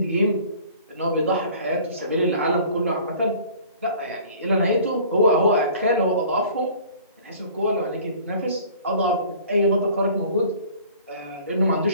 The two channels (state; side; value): inverted; both; correlation -0.48